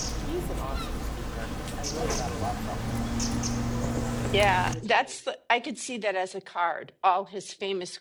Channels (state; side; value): identical; both; correlation 1.00